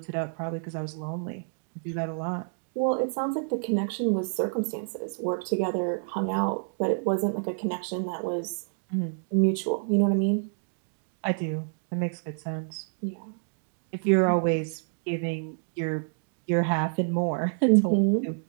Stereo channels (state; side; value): silent; left; digital silence